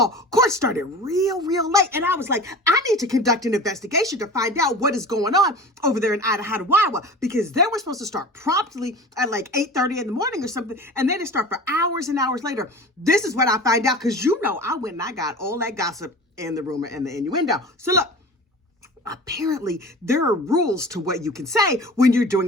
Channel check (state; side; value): normal; both; correlation 0.37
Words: court started real late. And I was like, I need to conduct an investigation to find out what is going on over there in Idaho, because they were supposed to start promptly at like 8:30 in the morning or something. And then it start for hours and hours later. This is what I find out because I went and I got all that gossip and the rumor and the innuendo. So look. Apparently, there are rules to what you can say when you're